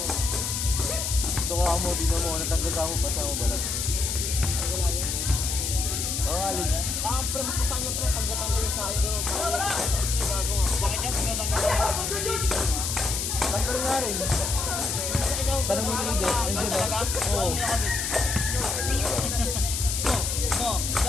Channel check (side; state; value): left; noise; hiss, 2 dB below the sound